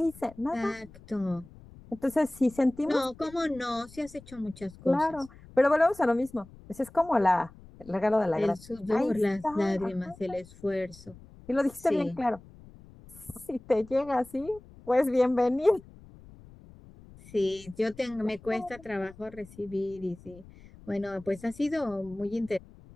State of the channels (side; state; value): left; noise; rumble, 21 dB below the sound